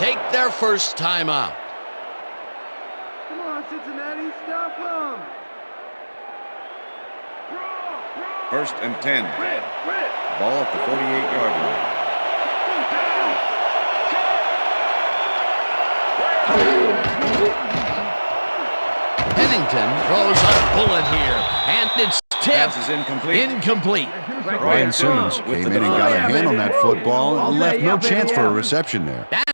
take their first timeout. Come on, Cincinnati, stop them. First and 10. Ball at the 48-yard line. Pennington throws a bullet here, and it's tipped. Incomplete. Ryan Simmons came in and got a hand on that football and left no chance for a reception there. That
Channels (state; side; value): inverted; both; correlation -1.00